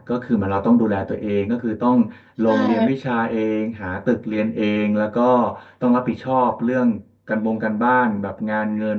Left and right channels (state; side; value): identical; both; correlation 1.00